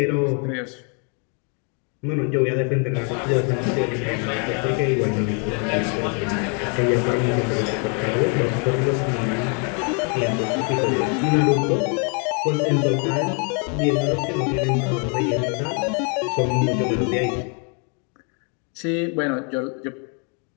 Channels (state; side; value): quieter; right; 38.6 dB